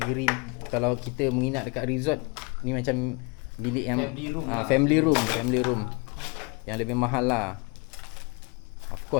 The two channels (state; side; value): quieter; right; 31.3 dB